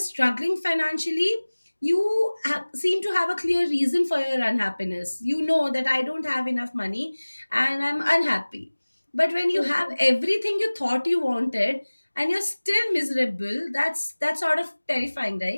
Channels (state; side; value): inverted; both; correlation -1.00